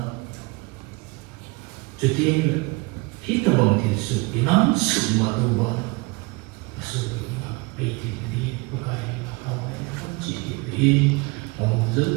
cho tiên hít ta bằng thiền sự cái nắm sự mà tu bằng sự là bây thì đi Pakai là không chỉ đi ông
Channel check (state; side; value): quieter; left; 26.4 dB